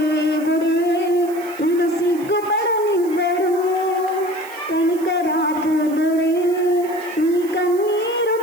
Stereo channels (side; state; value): right; noise; hiss, 20 dB below the sound